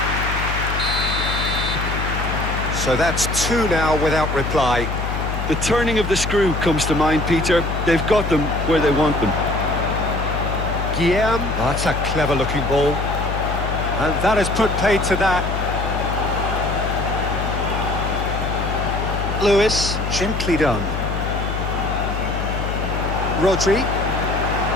So that's 2 now without reply. The turning of the screw comes to mind, Peter. They've got them where they want them. Guillaume. Oh, that's a clever-looking ball. And that has put paid to that. Lewis. Gently done. Rodri.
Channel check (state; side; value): noise; left; hum, 3 dB below the sound